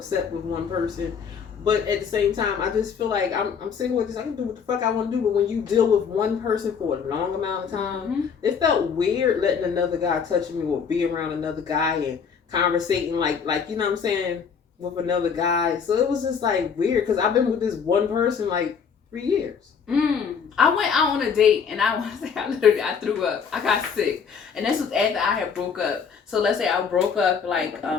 with one person. But at the same time, I just feel like I'm single with this. I can do what the fuck I want to do. But when you deal with one person for a long amount of time, it felt weird letting another guy touch me or be around another guy and conversating like you know what I'm saying, with another guy. So it was just like weird, because I've been with this one person like 3 years. I went out on a date, and I threw up. I got sick, and this was after I had broke up. So let's say I broke up like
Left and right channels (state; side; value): quieter; right; 6.5 dB